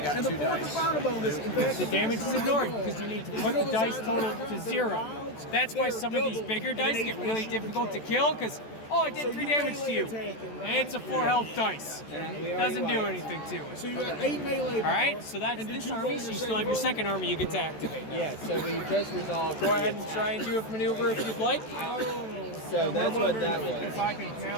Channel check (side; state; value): right; late; 14 ms